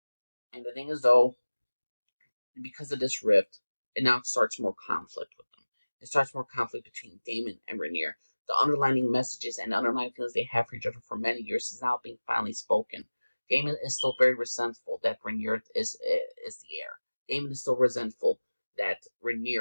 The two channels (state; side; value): inverted; both; correlation -1.00